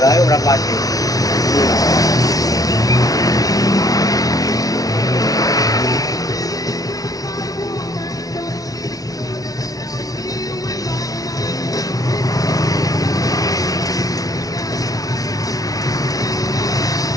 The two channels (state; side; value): late; right; 0.18 ms